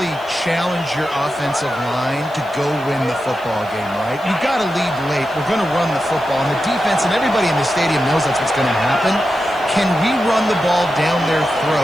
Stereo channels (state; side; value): noise; right; hiss, 26 dB below the sound